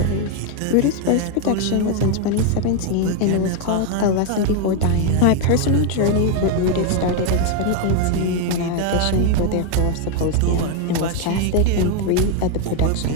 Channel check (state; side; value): different; both; correlation 0.01